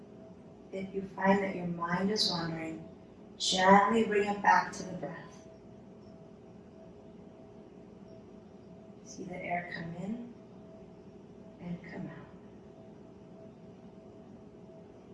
If you find that your mind is wandering, gently bring it back to the breath. See the air come in and come out.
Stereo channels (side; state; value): both; identical; correlation 1.00